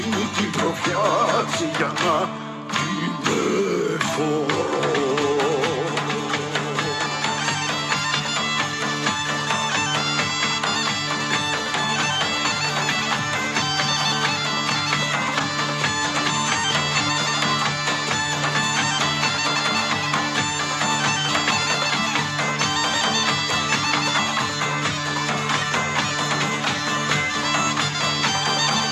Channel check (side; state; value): both; identical; correlation 1.00